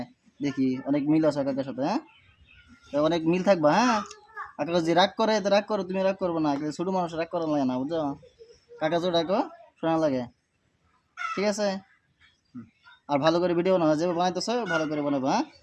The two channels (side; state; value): both; identical; correlation 1.00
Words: দেখি, অনেক মিল আছে কাকার সাথে, হ্যাঁ তো অনেক মিল থাকবা, হ্যাঁ কাকা যদি রাগ করে তো রাগ করো, তুমি রাগ করবো না, কিন্তু ছোট মানুষ রাগ করা লাগে না, বুঝছো? কাকা যদি রাখো শোনা লাগে, ঠিক আছে? আর ভালো করে ভিডিও বানাও, যেভাবে বানাইতেছো ভালো করে বানাবো, হ্যাঁ